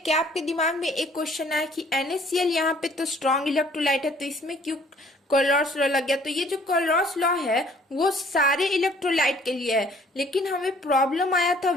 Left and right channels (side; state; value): both; normal; correlation 0.58